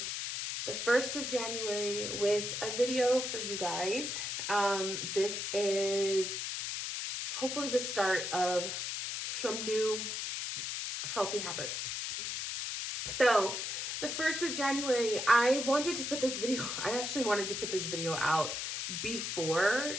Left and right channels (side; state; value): left; noise; hiss, 3 dB below the sound